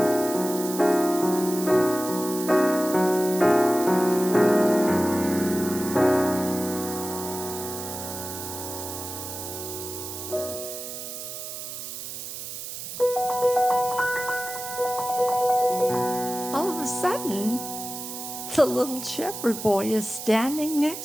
All of a sudden, the little shepherd boy is standing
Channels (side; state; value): right; noise; hiss, 8 dB below the sound